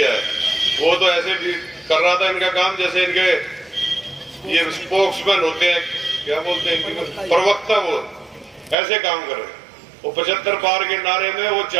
है वो तो ऐसे भी कर रहा था इनका काम जैसे इनके ये स्पोक्समैन होते हैं, क्या बोलते हैं इनकी, प्रवक्ता, वो ऐसे काम कर रहे हैं। वो 75 पार के नारे में वो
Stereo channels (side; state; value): left; drops out; at 8.8 s